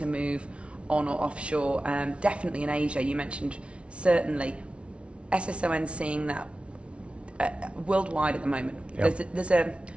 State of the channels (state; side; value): late; left; 0.060 ms